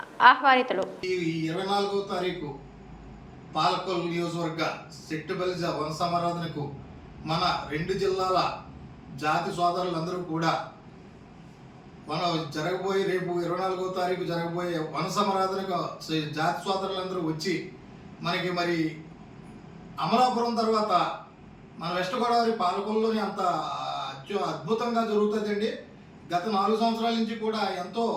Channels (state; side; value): identical; both; correlation 1.00